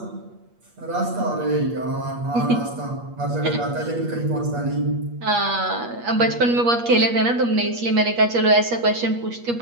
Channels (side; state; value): left; late; 8.4 ms